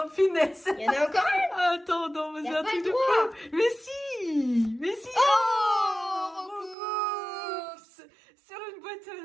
Oh, finesse. Il y en a encore une. Attends, non, mais Y a c'est un pas truc le de droit. fou. Mais si. Mais si. Oh, Roucoups. Sur une boîte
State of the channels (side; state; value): left; drops out; at 6.8 s